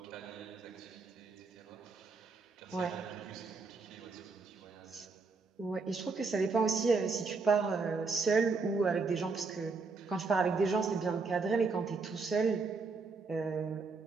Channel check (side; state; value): left; quieter; 4.3 dB